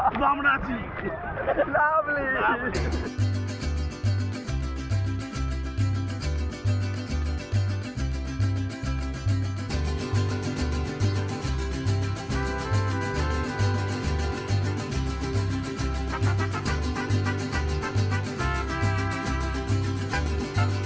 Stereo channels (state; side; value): identical; both; correlation 1.00